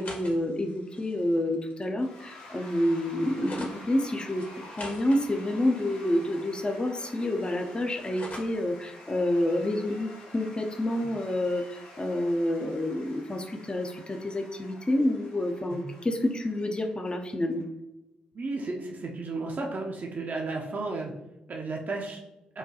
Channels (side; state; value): both; normal; correlation 0.88